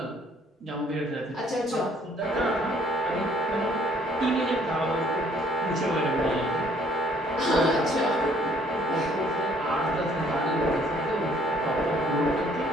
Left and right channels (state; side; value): normal; both; correlation 0.62